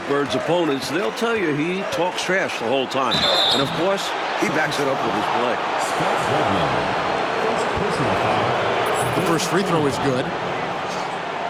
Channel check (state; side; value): identical; both; correlation 1.00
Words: Bird's opponents, they'll tell you he talks trash the whole time. And of course, he backs it up with his play. The first free throw is good.